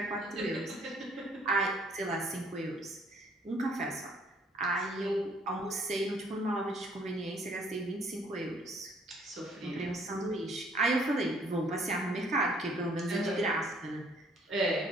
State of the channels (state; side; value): normal; both; correlation 0.62